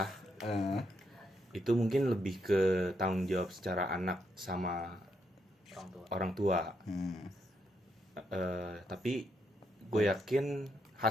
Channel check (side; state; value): both; normal; correlation 0.78